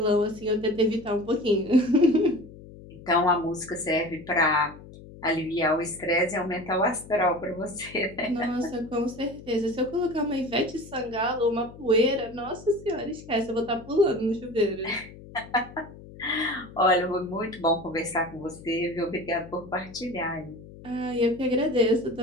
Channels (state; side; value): noise; left; hum, 17 dB below the sound